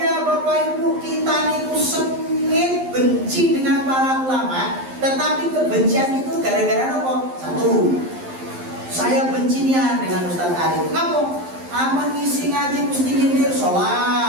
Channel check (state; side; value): late; left; 11 ms